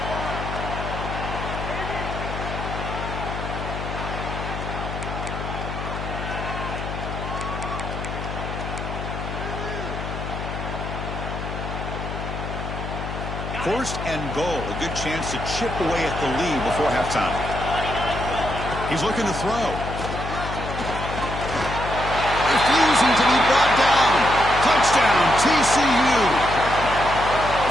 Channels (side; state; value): left; noise; hum, 6 dB below the sound